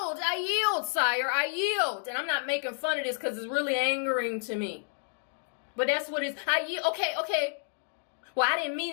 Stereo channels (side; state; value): right; silent; digital silence